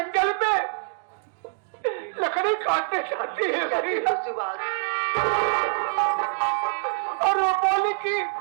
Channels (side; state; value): left; silent; digital silence